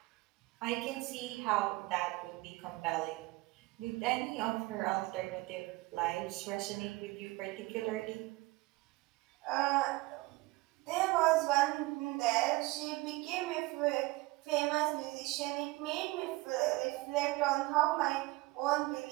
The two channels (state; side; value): quieter; left; 21.6 dB